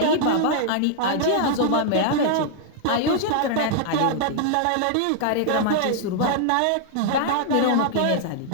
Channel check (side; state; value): both; different; correlation -0.01